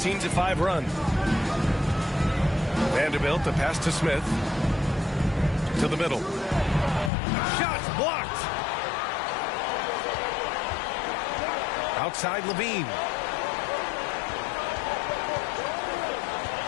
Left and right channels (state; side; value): drops out; right; at 7.1 s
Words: run. Vanderbilt, the pass to Smith. To the middle. Shots blocked. Outside Levine.